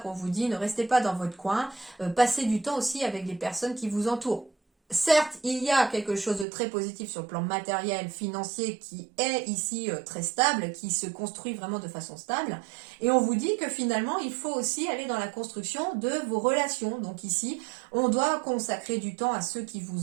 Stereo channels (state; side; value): drops out; left; at 6.5 s